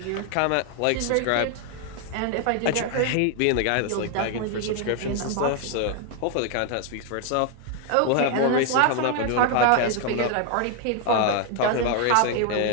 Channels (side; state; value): both; different; correlation 0.00